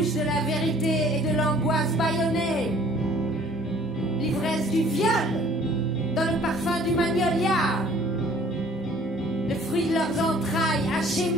de la vérité et de l'angoisse bâillonnée, l'ivresse du viol dans le parfum du magnolia, le fruit de leurs entrailles hachées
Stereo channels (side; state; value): both; normal; correlation 0.54